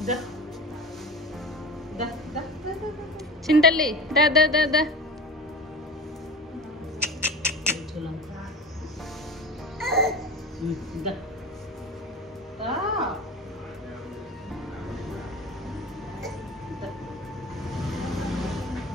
చింతల్లి దా దా దా దా.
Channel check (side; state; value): both; normal; correlation 0.32